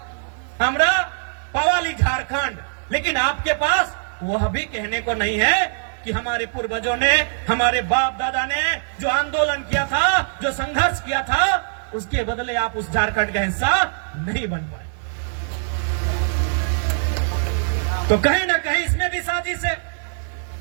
हमरा पवाली झारखंड, लेकिन आपके पास वह भी कहने को नहीं है कि हमारे पूर्वजों ने, हमारे बाप दादा ने जो आंदोलन किया था, जो संघर्ष किया था, उसके बदले आप उस झारखंड का हिस्सा नहीं बन पाए। तो कहीं ना कहीं इसमें भी साजिश है,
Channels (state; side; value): silent; left; digital silence